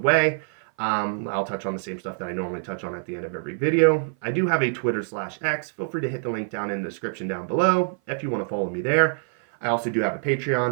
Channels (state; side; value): silent; left; 56 dB below the other